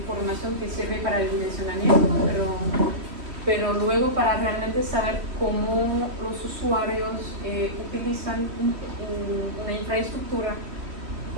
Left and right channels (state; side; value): late; left; 3.1 ms